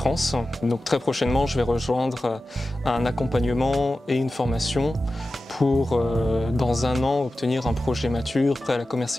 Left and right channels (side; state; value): both; normal; correlation 0.94